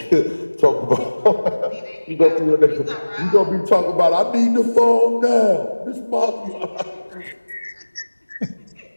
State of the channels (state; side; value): inverted; both; correlation -1.00